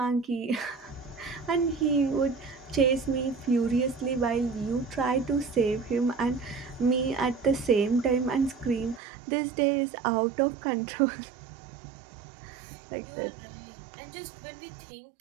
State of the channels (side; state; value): left; drops out; at 9.0 s